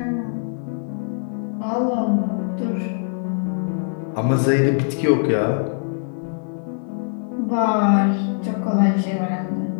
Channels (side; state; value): right; silent; digital silence